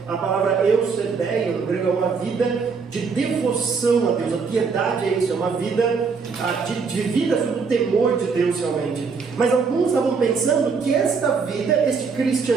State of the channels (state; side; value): quieter; left; 5.2 dB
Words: A palavra eusebeia no grego é uma vida de devoção a Deus. A piedade é isso, é uma vida de vida sob o temor de Deus realmente. Mas alguns estavam pensando que esta vida, este